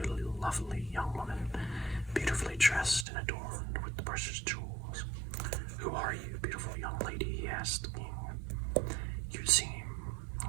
lovely young woman, beautifully dressed and adorned with the precious jewels. "Who are you, beautiful young lady?" he asked the king. "You seem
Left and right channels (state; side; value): drops out; left; at 3.1 s